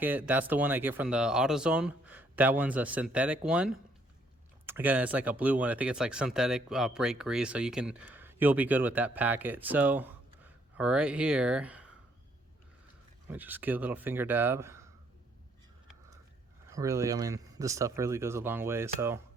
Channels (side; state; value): both; normal; correlation 0.68